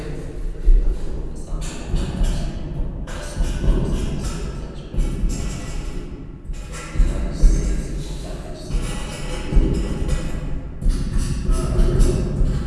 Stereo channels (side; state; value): both; identical; correlation 1.00